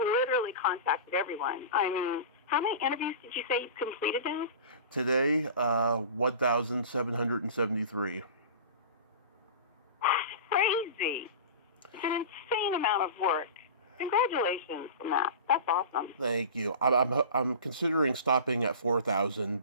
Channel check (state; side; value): inverted; both; correlation -0.34